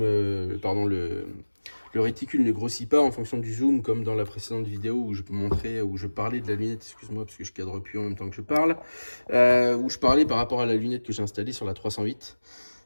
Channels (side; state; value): both; inverted; correlation -1.00